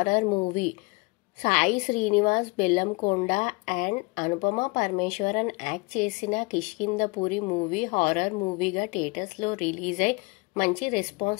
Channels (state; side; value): quieter; right; 27.2 dB